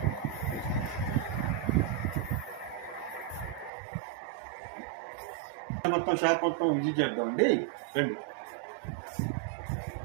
మొత్తం షాప్ మొత్తం విజిట్ చేద్దామండి, రండి.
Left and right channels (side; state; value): left; drops out; at 3.7 s